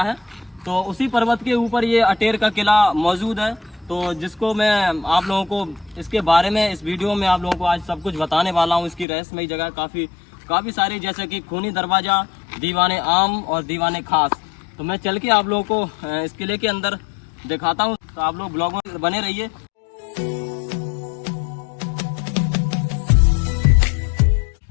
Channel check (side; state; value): right; drops out; at 9.1 s